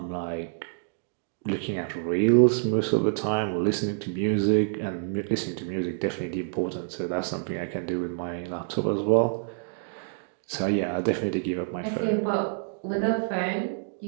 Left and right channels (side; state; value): left; silent; digital silence